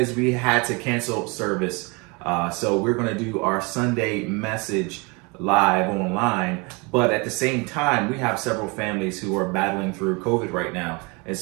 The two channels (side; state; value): left; quieter; 28.9 dB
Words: we had to cancel service. So we're gonna do our Sunday message live online. But at the same time, we have several families who are battling through COVID right now. And